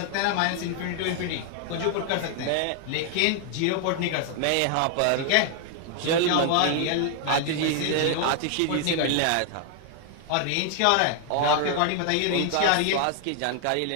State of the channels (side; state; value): both; different; correlation 0.00